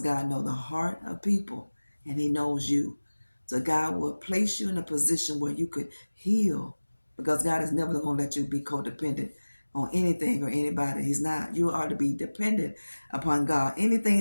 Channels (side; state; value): both; inverted; correlation -1.00